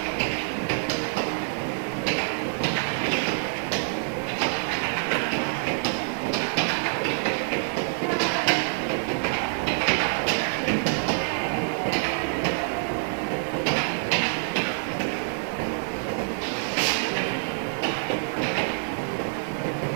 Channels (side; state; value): left; silent; 61 dB below the other